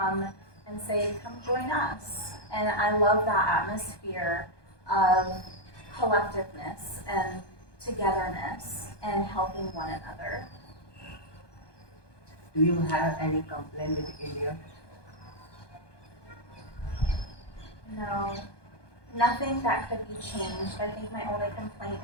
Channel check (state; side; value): late; right; 1.2 ms